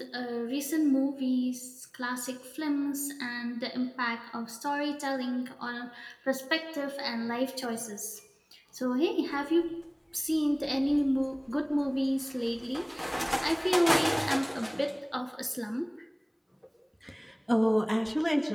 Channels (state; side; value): identical; both; correlation 1.00